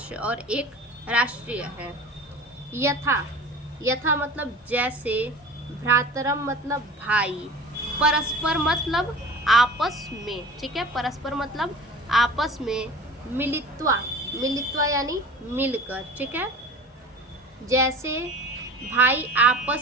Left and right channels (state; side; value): normal; both; correlation 0.39